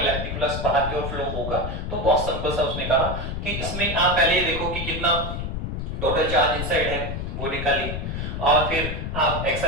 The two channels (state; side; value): noise; left; rumble, 4 dB below the sound